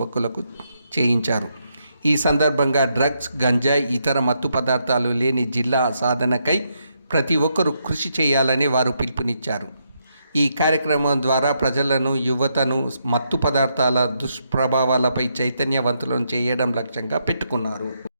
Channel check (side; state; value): both; inverted; correlation -0.79